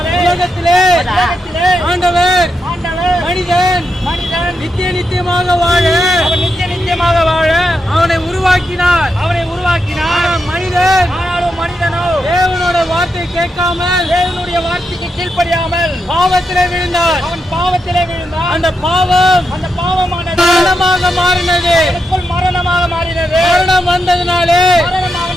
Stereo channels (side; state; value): both; normal; correlation 0.85